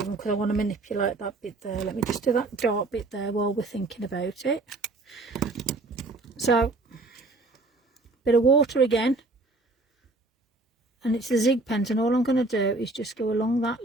them because I want to manipulate that bit there. Let me just do that dark bit there while we're thinking about it. So, bit of water again. And it's the zig pens, and all I'm going to do is just go along that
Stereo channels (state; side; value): quieter; left; 3.1 dB